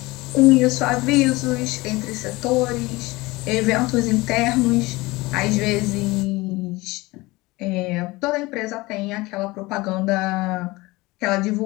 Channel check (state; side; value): quieter; right; 21.7 dB